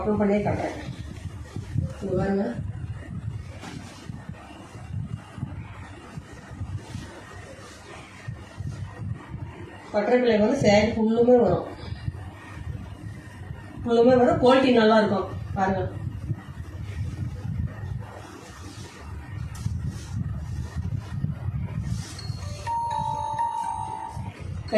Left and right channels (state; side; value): identical; both; correlation 1.00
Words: பண்ணியே காட்டுறேன். இங்க பாருங்க. பட்டர்ஃப்ளை வந்து சேரீ ஃபுல்லுமே வரும். குவாலிட்டி நல்லா இருக்கும். பாருங்க,